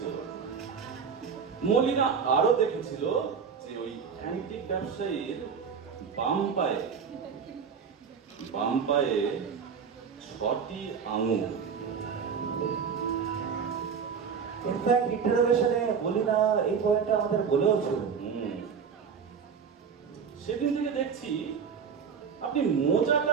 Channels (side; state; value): left; quieter; 6.4 dB